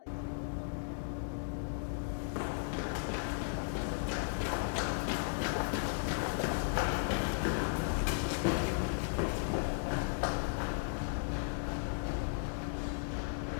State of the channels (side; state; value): right; silent; digital silence